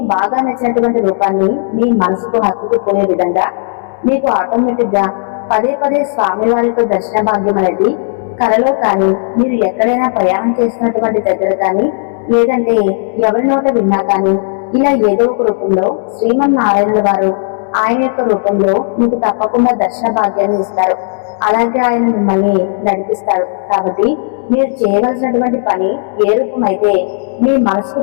బాగా నచ్చినటువంటి రూపాన్ని మీ మనసుకు హత్తుకుపోయే విధంగా మీకు ఆటోమేటిక్ గా పదే పదే స్వామివారి యొక్క దర్శన భాగ్యం అనేది కలలో కానీ, మీరు ఎక్కడైనా ప్రయాణం చేస్తున్నటువంటి దగ్గర కానీ, లేదంటే ఎవరి నోట విన్నా కానీ, ఇలా ఏదో ఒక రూపంలో శ్రీమన్నారాయణుల వారు ఆయన యొక్క రూపంలో మీకు తప్పకుండా దర్శన భాగ్యాన్ని ఇస్తారు. అలాగే ఆయన మిమ్మల్ని నడిపిస్తాడు. కాబట్టి మీరు చేయవలసినటువంటి పని ఏ రూపమైతే మీ మనసుకు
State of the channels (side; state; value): right; silent; digital silence